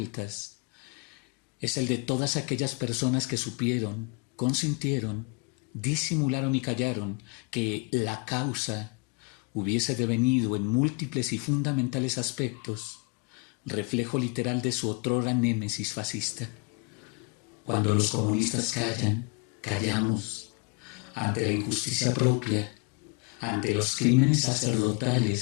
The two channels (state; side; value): quieter; right; 31.0 dB